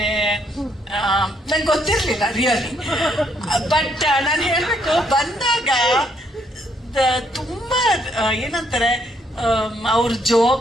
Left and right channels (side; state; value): both; normal; correlation 0.71